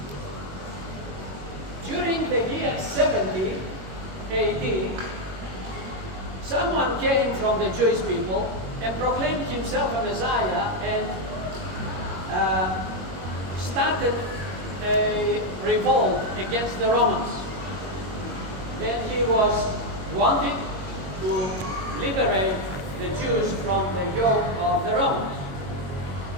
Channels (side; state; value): left; late; 21 ms